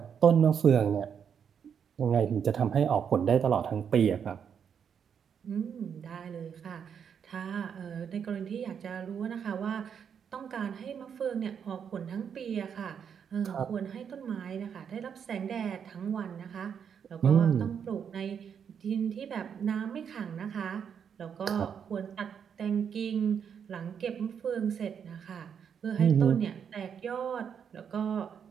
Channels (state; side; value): quieter; left; 7.5 dB